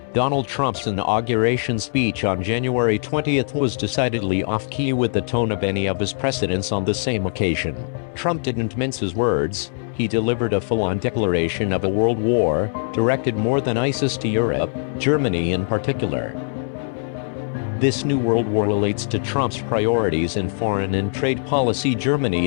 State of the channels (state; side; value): silent; right; 64 dB below the other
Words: Donald Trump's inauguration speech on January 20th was decidedly off-key with the tone of any of his precedents on the same occasion. Trump didn't mince his words. He delivered a full-on declaration of a world war, directed more than ISIS to Europe, Germany in particular. This new world war relates to Trump's priorities in foreign and trade policy. Germany